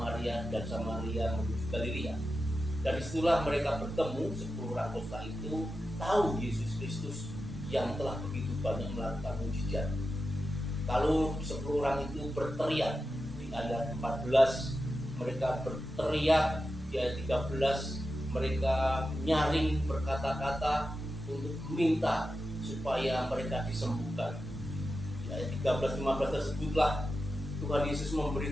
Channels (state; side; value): normal; both; correlation 0.90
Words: dan Samaria menuju Galilea. Dan disitulah mereka bertemu, 10 orang kusta itu tahu Yesus Kristus yang telah begitu banyak melakukan mukjizat. Kalau 10 orang itu berteriak, di ayat 14 mereka berteriak, di ayat 13 mereka nyaring berkata-kata untuk meminta supaya mereka disembuhkan. Di ayat 13-15 tersebutlah Tuhan Yesus